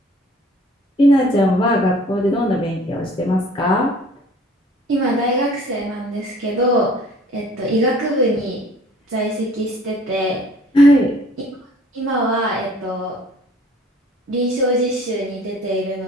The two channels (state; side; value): normal; both; correlation 0.51